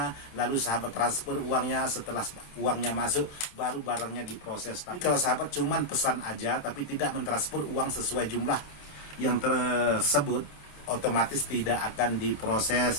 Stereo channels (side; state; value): right; late; 28 ms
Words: lalu sahabat transfer uangnya. Setelah uangnya masuk, baru barangnya diproses. Tapi kalau sahabat cuman pesan aja tapi tidak mentransfer uang sesuai jumlah yang tersebut, otomatis tidak akan